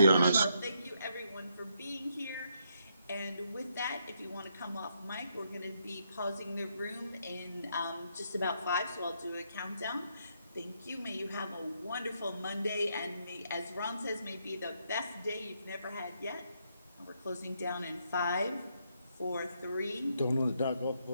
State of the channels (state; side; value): inverted; both; correlation -0.76